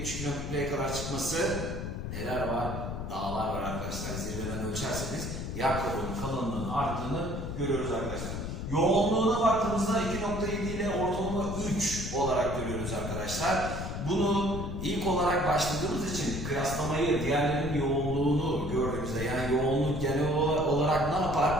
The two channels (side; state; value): left; noise; rumble, 5 dB below the sound